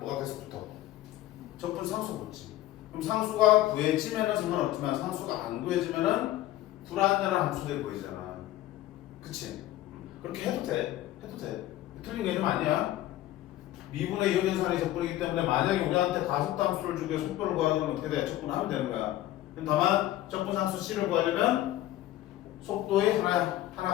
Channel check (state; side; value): quieter; right; 14.7 dB